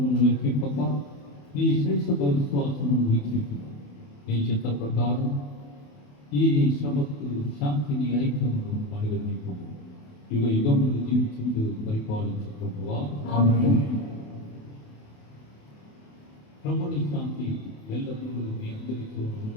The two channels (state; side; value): late; right; 28 ms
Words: లెక్కింపక నీ శ్రేష్ఠ విశ్వాసమును వీక్షించు. నీ చిత్త ప్రకారం ఈ నీ శ్రమకు శాంతిని ఐక్యమును అనుగ్రహింపు. యుగ యుగములు జీవించుతూ పరిపాలించు ప్రభువా. ప్రభుని శాంతి ఎల్లప్పుడూ మీ అందరితో